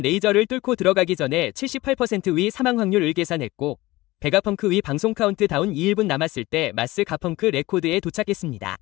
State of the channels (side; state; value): right; quieter; 19.3 dB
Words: 레이저를 뚫고 들어가기 전에 78%의 사망 확률을 계산했고 베가펑크의 방송 카운트다운 2분 남았을 때 마스 가펑크 레코드에 도착했습니다.